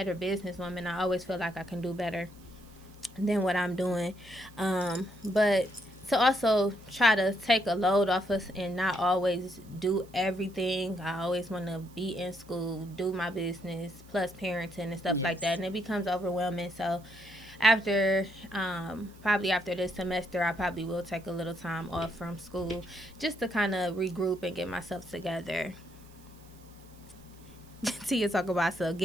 businesswoman. I always feel like I can do better than what I'm doing. But to also try to take a load off us and not always do everything. I always want to be in school, do my business, plus parenting and stuff like that. And it becomes overwhelming. So after probably after this semester, I probably will take a little time off from school just to kind of regroup and get myself together. Tia talk about, so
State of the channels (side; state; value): right; noise; hiss, 26 dB below the sound